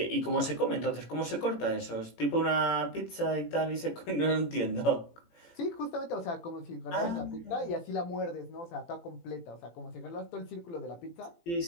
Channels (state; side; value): late; right; 18 ms